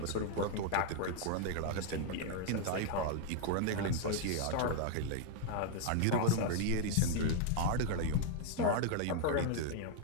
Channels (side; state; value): both; different; correlation 0.00